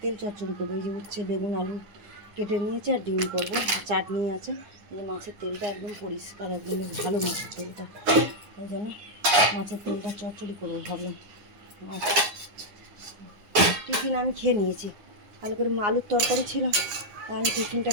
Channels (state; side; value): late; left; 9.9 ms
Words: তেল চচ্চড়ি করবো। এই যে উচ্ছে বেগুন আলু কেটে নিয়েছি আর ডিম করবো, চাটনি আছে। এই যে মাছের তেলটা একদম পরিষ্কার, একদম বেশ ভালো মাছের তেলটা, ওই জন্য মাছের তেলটা চচ্চড়ি করবো ভাবলাম। আর টিফিন আমি খেয়ে নিয়েছি, ভালো করে আলুর তরকারি ছিল, আমি টিফিনটা